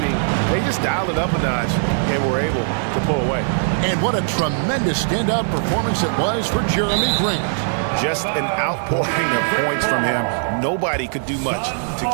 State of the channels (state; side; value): silent; left; 66 dB below the other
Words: they just dialed it up a notch and were able to pull away. And what a tremendous standout performance it was for Jeremy Grant. Just an outpouring of points from him. Nobody could do much to